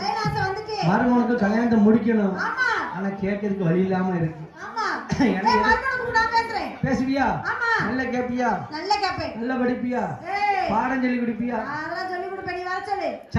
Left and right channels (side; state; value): both; identical; correlation 1.00